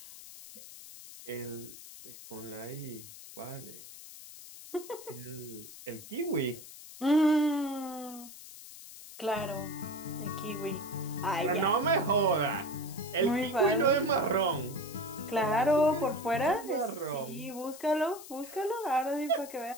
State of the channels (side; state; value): left; noise; hiss, 15 dB below the sound